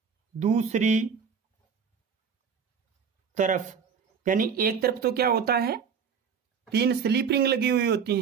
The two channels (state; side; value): quieter; left; 6.6 dB